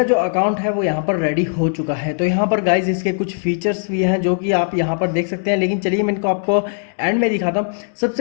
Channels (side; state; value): right; silent; digital silence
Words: जो अकाउंट है वो यहाँ पर रेडी हो चुका है। तो यहाँ पर गाइज इसके कुछ फीचर्स भी हैं जो कि आप यहाँ पर देख सकते हैं। लेकिन चलिए मैं इनको आपको एंड में दिखाता हूँ।